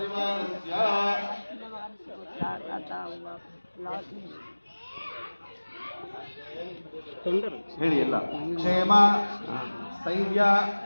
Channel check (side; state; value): both; inverted; correlation -1.00